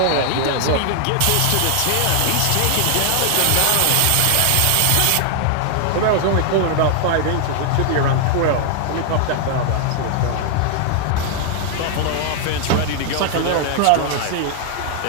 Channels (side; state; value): both; different; correlation 0.00